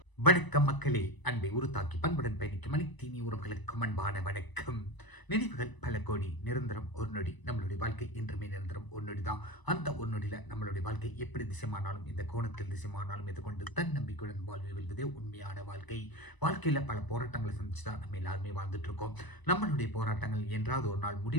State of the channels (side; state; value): right; late; 1.0 ms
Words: வணக்கம் மக்களே, அன்பை உருத்தாக்கி பண்புடன் பயணிக்கும் அனைத்தீனி உறவுகளுக்கு அன்பான வணக்கம். நினைவுகள் பல கோடி, நிரந்தரம் ஒரு நொடி. நம்மளுடைய வாழ்க்கை என்றுமே நிரந்தரம் ஒரு நொடி தான். அந்த ஒரு நொடியில் நம்மளுடைய வாழ்க்கை எப்படி திசைமானாலும், இந்த கோணத்தில் திசைமானாலும் இதை கொண்டு தன்னம்பிக்கையுடன் வாழ்வை வெல்வதே உண்மையான வாழ்க்கை. வாழ்க்கையில் பல போராட்டங்களை சந்திச்சு தான் நம்ம எல்லாருமே வாழ்ந்துட்டு இருக்கோம். நம்மளுடைய போராட்டங்கள் என்றாவது ஒரு நாள்